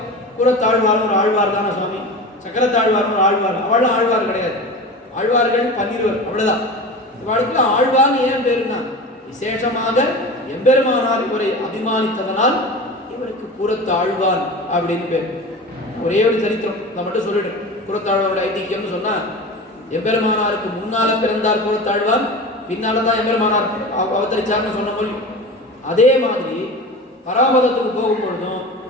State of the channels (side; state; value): both; normal; correlation 0.31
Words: கூறத்தாழ்வார்னு ஒரு ஆழ்வார் தானே சுவாமி, சக்கரத்தாழ்வார்னு ஒரு ஆழ்வார். அவளும் ஆழ்வார் கிடையாது, ஆழ்வார்கள் 12 அவ்வளவுதான். இவளுக்கு ஆழ்வார்னு ஏன் பேருன்னா, விசேஷமாக எம்பெருமானார் இவரை அபிமானித்ததனால் இவருக்கு கூறத்தாழ்வான் அப்படின்னு பேர். ஒரே ஒரு சரித்திரம் நான் மட்டும் சொல்லிடுறேன். கூறத்தாழ்வாரோட ஐதிக்கியம்னு சொன்னா, எம்பெருமானாருக்கு முன்னால பிறந்தார் கூறத்தாழ்வான், பின்னால்தான் எம்பெருமானார் அவதரிச்சார்னு சொன்ன மொழி. அதே மாதிரி பராமதத்துக்கு போகும்பொழுதும்